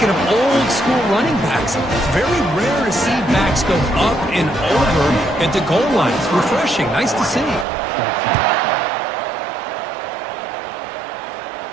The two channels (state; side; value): drops out; left; at 7.7 s